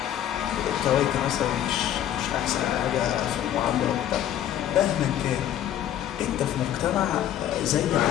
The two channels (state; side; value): quieter; right; 11.3 dB